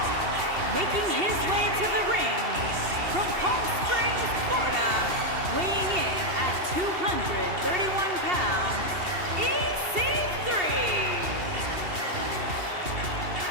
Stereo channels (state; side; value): late; left; 2.7 ms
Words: Making his way to the ring from Palm Springs, Florida, weighing in at 231 pounds, EC3.